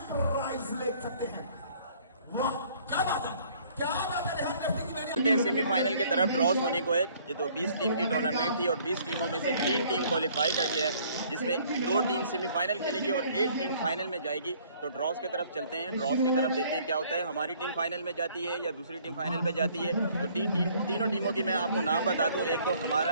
प्राइज ले सकते हैं। वाह क्या बात है, क्या बात है। सेमीफाइनल की तरफ ड्रॉस होने को है। ये तो 20 टीम की टूर्नामेंट थी और 20 टीमों में से 3 टीम क्वालिफाई कर गया है, जिसमें 2 टीम सेमीफाइनल खेलेगी और 1 टीम फाइनल में जाएगी। तो ड्रॉस की तरफ चलते हैं, ड्रॉस की तरफ देखते हैं क्या होता है, हमारी टीम फाइनल में जाती है या दूसरी टीम फाइनल में जाती है। तो तीनों टीमों की मैं आपको नाम बता दूं। एक तो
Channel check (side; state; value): both; inverted; correlation -0.59